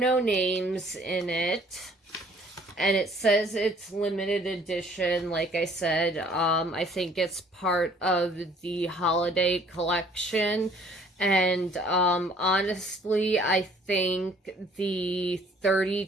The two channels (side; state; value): both; normal; correlation 0.58